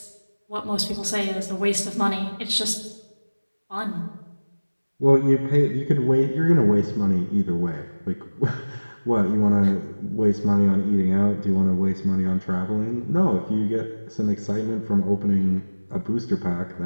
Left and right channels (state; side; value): inverted; both; correlation -1.00